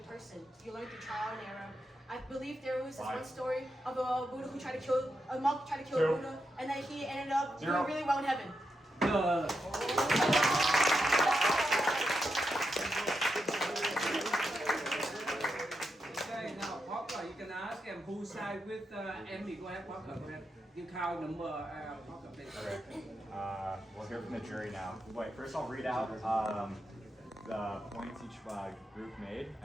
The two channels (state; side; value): normal; both; correlation 0.85